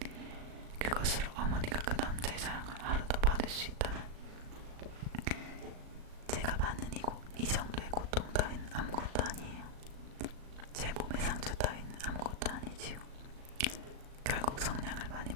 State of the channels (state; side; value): late; left; 37 ms